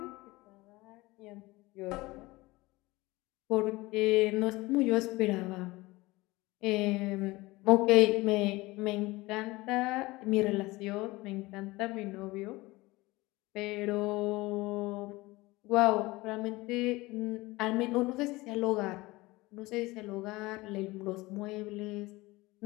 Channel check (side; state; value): right; quieter; 21.0 dB